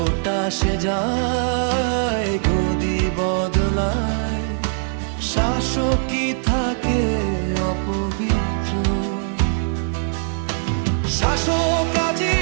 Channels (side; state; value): left; silent; digital silence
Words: আসে যায়, গদি বদলায়, শাসকই থাকে অপবিত্র। শাসক আজি